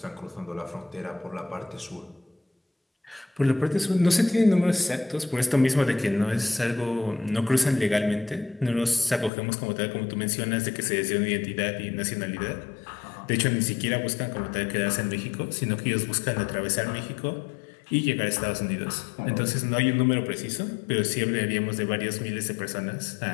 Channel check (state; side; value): drops out; right; at 9.3 s